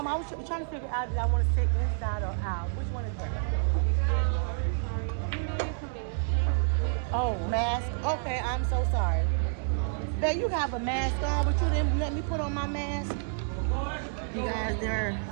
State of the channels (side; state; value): left; silent; digital silence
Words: was trying to figure out if I want to sit inside or out. Which one is that? Oh, mask. Okay, I'm so sorry. Babe, you have a mask on, but you didn't let me put on my mask. You guys, they're